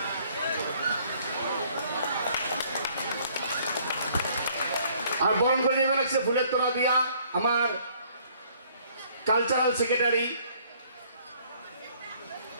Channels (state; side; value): inverted; both; correlation -0.61